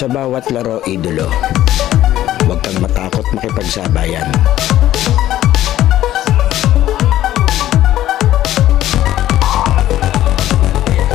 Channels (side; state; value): right; quieter; 13.4 dB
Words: bawat laro, idolo, huwag kang matakot makipagsabayan.